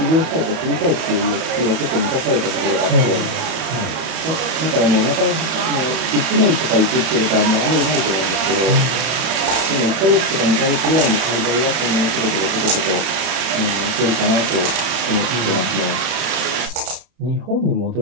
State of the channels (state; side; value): late; left; 31 ms